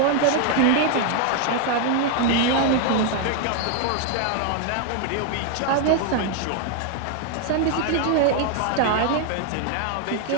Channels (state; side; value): different; both; correlation 0.00